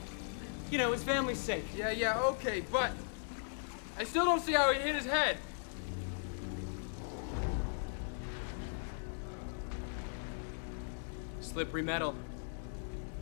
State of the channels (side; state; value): right; silent; 52 dB below the other